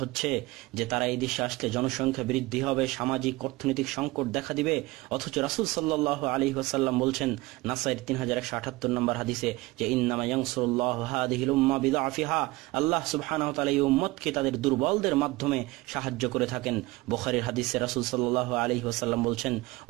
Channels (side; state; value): left; quieter; 21.1 dB